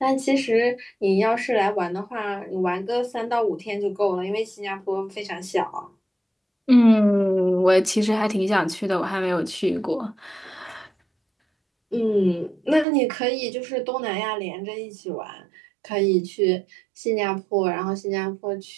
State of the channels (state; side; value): drops out; left; at 12.9 s